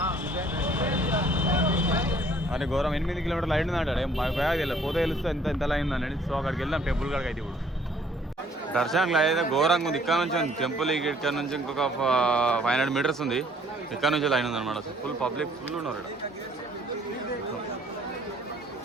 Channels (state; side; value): normal; both; correlation 0.60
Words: అని ఘోరం 8 కిలోమీటర్లు లైన్ ఉందంటాడు. తెలియదు, పోతే తెలుస్తే ఎంత లైన్ ఉందండి. సో అక్కడికి వెళ్దాం టెంపుల్ కాడికి. అయితే ఇప్పుడు దర్శనంలో అయితే ఘోరంగా ఉంది. ఇక్కడ నుంచి టెంపుల్ ఇక్కడ నుంచి ఇంకొక 500 మీటర్స్ ఉంది. ఇక్కడ నుంచి లైన్ ఉందన్నమాట. ఫుల్ పబ్లిక్ ఫుల్ ఉన్నారు ఇక్కడ.